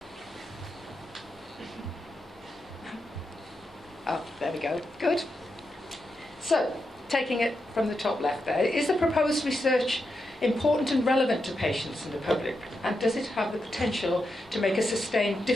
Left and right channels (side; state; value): both; normal; correlation 0.86